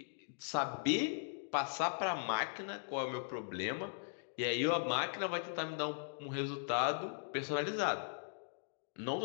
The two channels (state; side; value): silent; right; digital silence